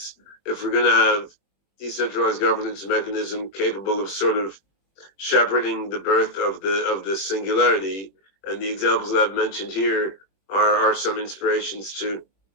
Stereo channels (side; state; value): right; late; 21 ms